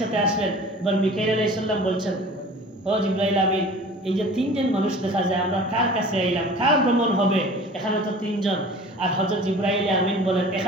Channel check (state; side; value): normal; both; correlation 0.43